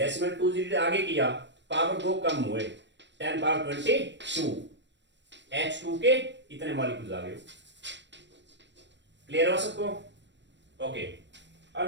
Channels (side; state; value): left; late; 0.52 ms